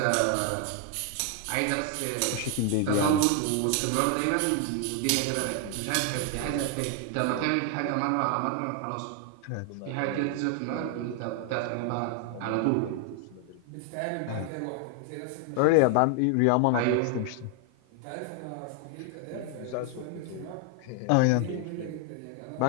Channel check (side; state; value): both; different; correlation 0.00